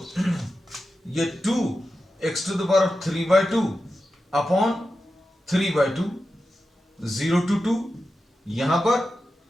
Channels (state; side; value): normal; both; correlation 0.91